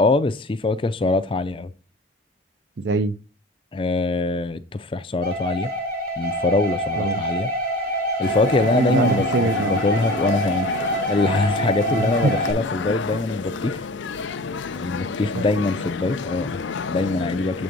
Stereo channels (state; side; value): normal; both; correlation 0.40